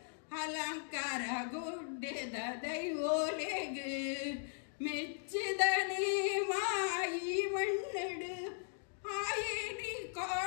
ಅಲಂಕಾರ ಗುಡ್ಡೆದ ದೈವೋಲೆಗ ಮೆಚ್ಚಿದನೇ ಮಾಯಿ ಮಣ್ಣಡು ಆಯೇನಿ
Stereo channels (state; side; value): silent; right; digital silence